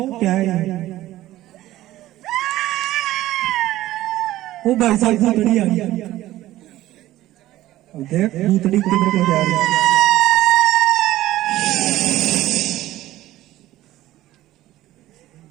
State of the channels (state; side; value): quieter; left; 15.2 dB